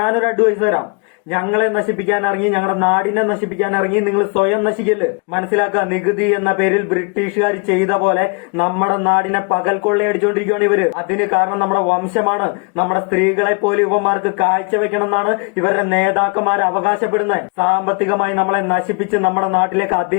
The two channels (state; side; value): quieter; right; 34.8 dB